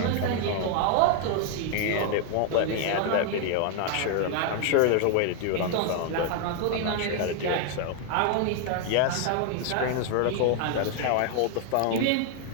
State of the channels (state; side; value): different; both; correlation 0.00